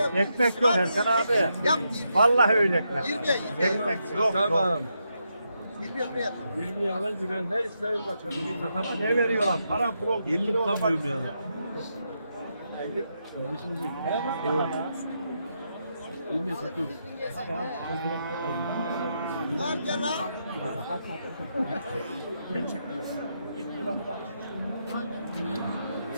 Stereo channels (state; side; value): inverted; both; correlation -0.82